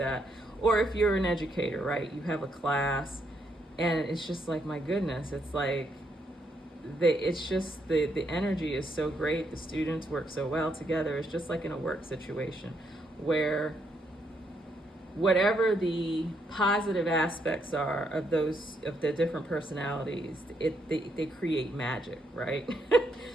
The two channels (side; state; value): both; normal; correlation 0.76